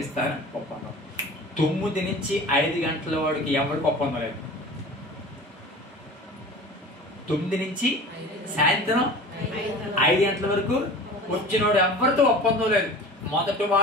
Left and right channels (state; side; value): normal; both; correlation 0.38